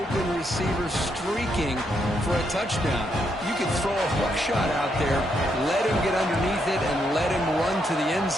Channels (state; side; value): normal; both; correlation 0.78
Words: receiver streaking for a touchdown. You could throw a hook shot out there, let him get underneath it, and let him run to the end